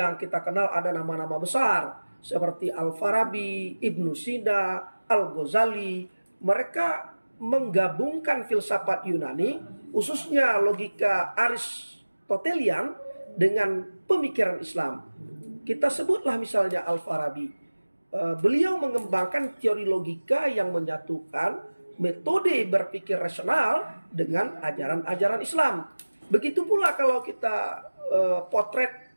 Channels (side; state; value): both; inverted; correlation -1.00